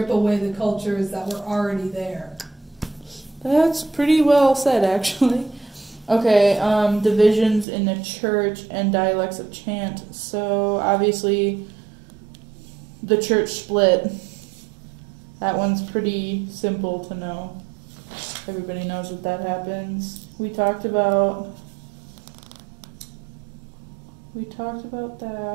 away the cultures that were already there. That's pretty well said, actually. Okay, divisions in the church and dialects of chant. So, obviously, the church split. That one's pretty simple to know. Everybody knows that that happens. We talked about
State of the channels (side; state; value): left; drops out; at 7.7 s